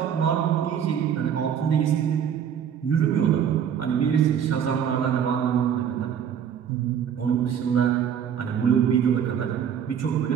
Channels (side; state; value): left; quieter; 8.5 dB